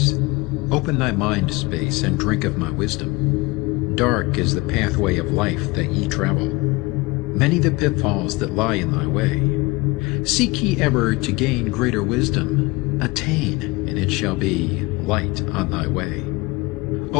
Open thy mind space and drink of my wisdom. Dark is the pathway of life that ye travel. Many the pitfalls that lie in thy way. Seek ye ever to gain greater wisdom. Attain, and it shall be light on thy way.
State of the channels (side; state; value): right; quieter; 23.5 dB